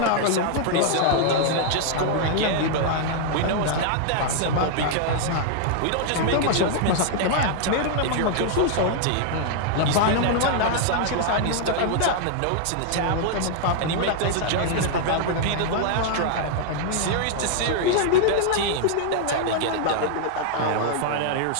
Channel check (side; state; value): both; different; correlation 0.00